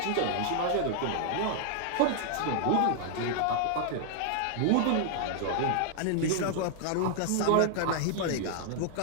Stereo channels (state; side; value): different; both; correlation 0.00